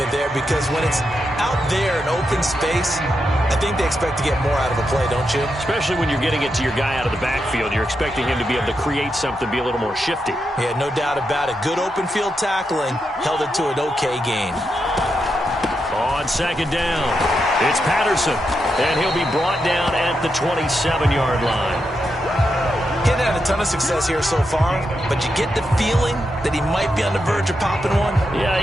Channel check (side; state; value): both; normal; correlation 0.85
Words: there because when it's out there in open space, I think they expect to get more out of a play, don't you? Especially when you're getting it to your guy out of the backfield. You're expecting him to be able to create something, be a little more shifty. Yeah, no doubt about it. Good open field tackling held it to an okay gain. On second down, it's Patterson, and he'll be brought down at the 27-yard line. He hasn't had a ton of success here so far, but you get the feeling that he might be on the verge of popping one.